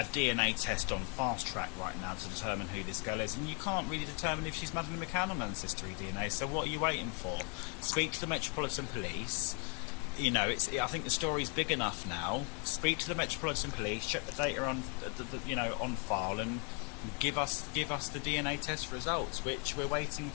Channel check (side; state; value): right; quieter; 37.2 dB